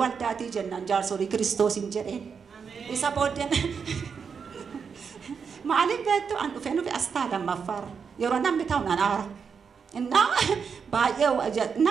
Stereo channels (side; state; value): left; quieter; 6.2 dB